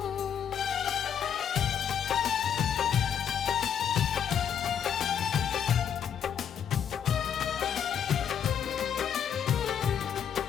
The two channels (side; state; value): right; quieter; 8.4 dB